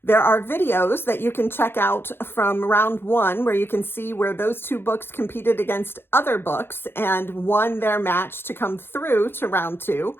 There are videos that you can check out from round 1 where you can see where those 2 books competed against other books and won their match to come through to round 2.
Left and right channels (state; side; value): late; right; 0.11 ms